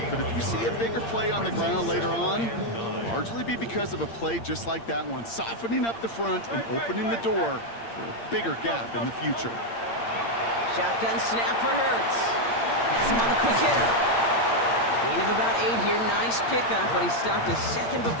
but if you see a bigger play on the ground later on, it'll largely be because of a play just like that one, softening up the front and opening the door for a bigger gap in the future. Shotgun snap for Hurts. Has him on the quick hitter. Gain of about 8 here. Nice pickup, but he stopped a second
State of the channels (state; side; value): late; right; 8.7 ms